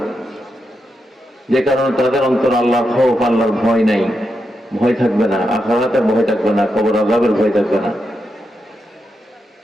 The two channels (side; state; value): both; normal; correlation 0.85